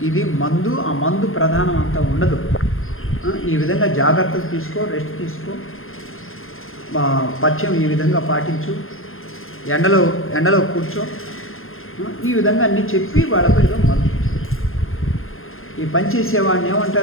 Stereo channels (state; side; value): late; right; 0.60 ms